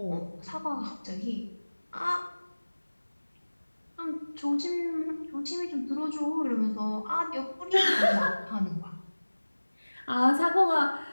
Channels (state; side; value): inverted; both; correlation -1.00